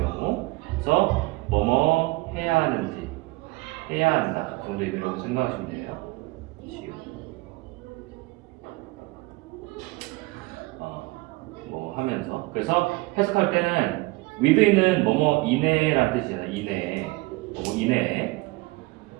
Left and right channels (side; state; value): left; quieter; 22.8 dB